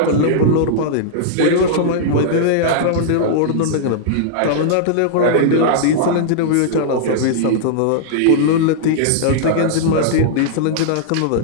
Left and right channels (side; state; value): both; different; correlation -0.02